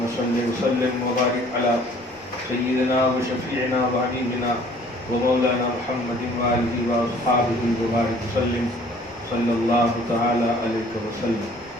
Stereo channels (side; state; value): left; noise; rumble, 28 dB below the sound